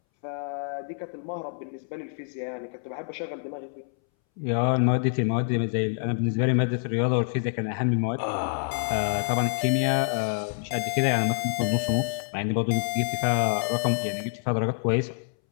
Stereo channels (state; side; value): silent; right; 60 dB below the other